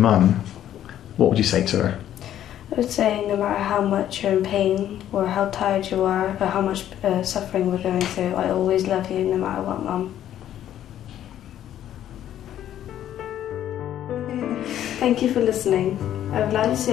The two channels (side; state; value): right; quieter; 11.4 dB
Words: what would you say to her? I would say no matter how much you're in pain or how tired you are or how much suffering we're going through, I always love you no matter what, Mum. Thank you for listening. I would like to